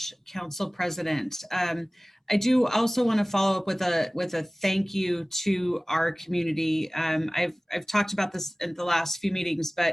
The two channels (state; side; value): normal; both; correlation 0.98